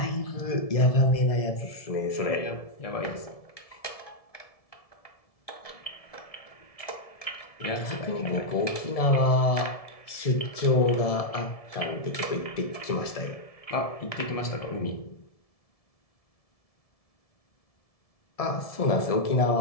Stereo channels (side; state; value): right; late; 1.7 ms